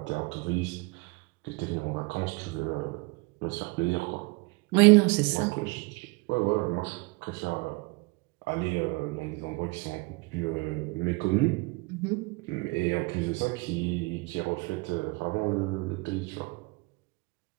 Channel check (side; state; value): left; quieter; 27.2 dB